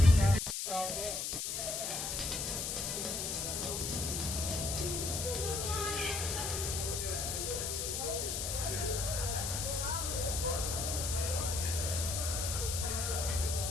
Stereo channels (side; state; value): left; noise; hiss, 2 dB below the sound